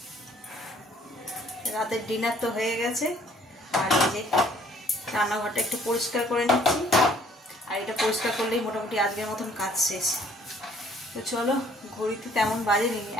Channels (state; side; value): normal; both; correlation 0.60